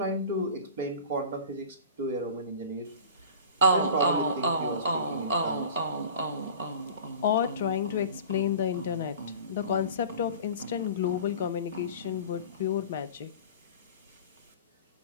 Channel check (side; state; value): both; inverted; correlation -0.39